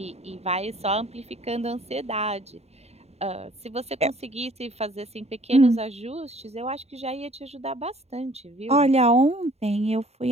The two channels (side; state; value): left; late; 0.31 ms